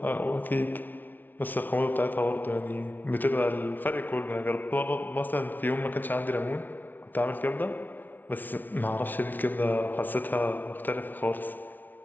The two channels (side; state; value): right; late; 0.085 ms